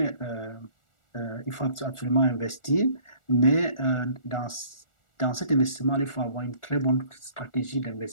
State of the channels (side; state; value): right; late; 1.4 ms